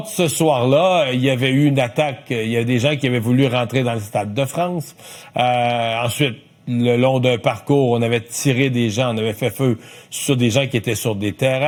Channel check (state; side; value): identical; both; correlation 1.00